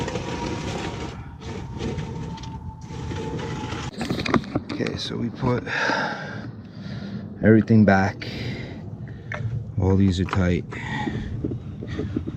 so we put everything back. All these are tight.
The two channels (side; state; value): both; identical; correlation 1.00